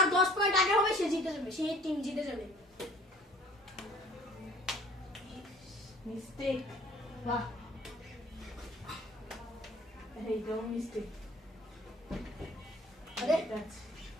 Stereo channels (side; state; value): both; normal; correlation 0.51